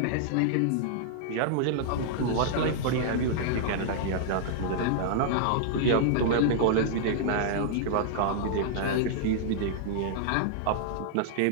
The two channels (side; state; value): both; different; correlation -0.01